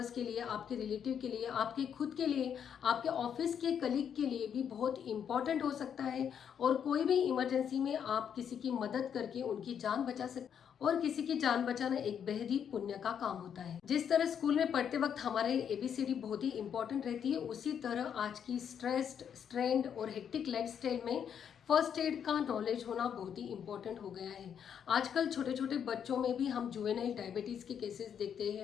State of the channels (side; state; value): right; quieter; 8.2 dB